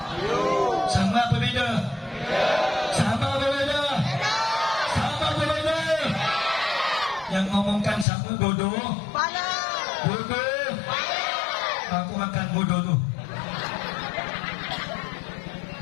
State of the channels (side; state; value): right; drops out; at 8.1 s